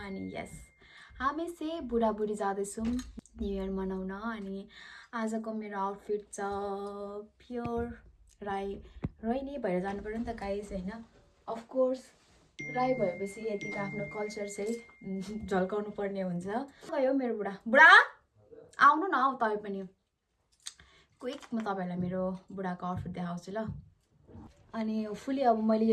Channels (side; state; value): both; identical; correlation 1.00